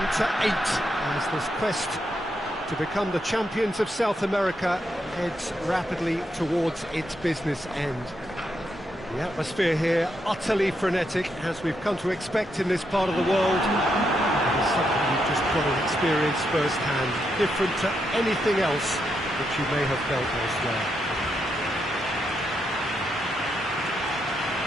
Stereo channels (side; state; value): both; normal; correlation 0.81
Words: to 8 as this quest to become the champions of South America heads rapidly towards its business end. The atmosphere here utterly frenetic, as we've come to expect in this part of the world. It is something you've just got to experience firsthand, different to anything else that you may have felt elsewhere.